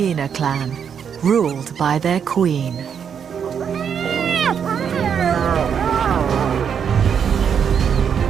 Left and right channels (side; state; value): left; quieter; 7.6 dB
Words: clan ruled by their queen.